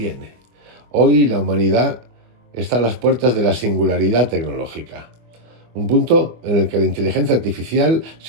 Hoy la humanidad está a las puertas de la singularidad tecnológica, un punto en el que la inteligencia artificial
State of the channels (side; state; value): left; late; 24 ms